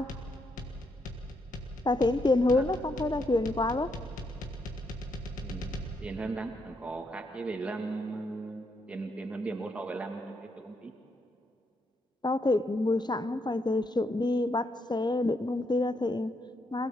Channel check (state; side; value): normal; both; correlation 0.77